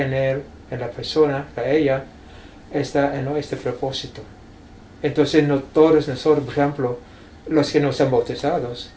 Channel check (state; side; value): identical; both; correlation 1.00